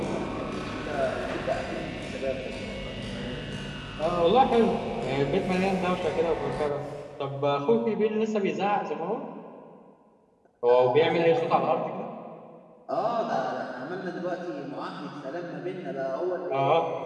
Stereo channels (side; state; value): both; identical; correlation 1.00